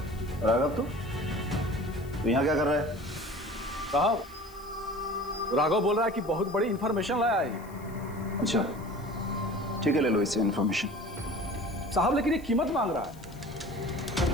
राघव तू यहाँ क्या कर रहा है? साहब, राघव बोल रहा है कि बहुत बड़ी इंफॉर्मेशन लाया है। अच्छा ठीक है, ले लो इससे इंफॉर्मेशन। साहब लेकिन ये कीमत मांग रहा है।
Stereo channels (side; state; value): left; noise; hiss, 24 dB below the sound